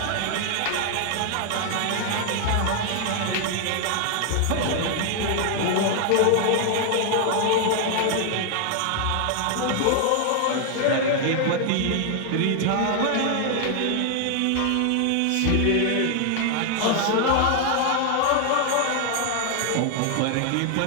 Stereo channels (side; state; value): both; different; correlation 0.00